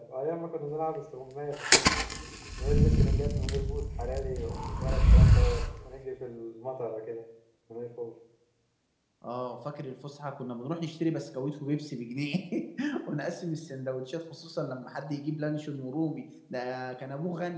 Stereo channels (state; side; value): identical; both; correlation 1.00